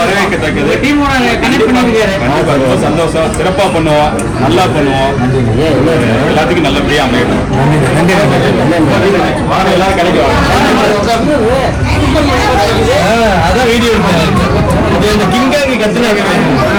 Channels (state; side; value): identical; both; correlation 1.00